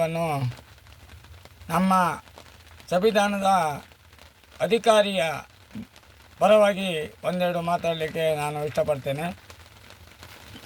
ನಮ್ಮ ಸಂವಿಧಾನದ ಅಧಿಕಾರಿಯ ಪರವಾಗಿ ಒಂದೆರಡು ಮಾತಾಡಲಿಕ್ಕೆ ನಾನು ಇಷ್ಟಪಡ್ತೇನೆ.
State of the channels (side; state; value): both; identical; correlation 1.00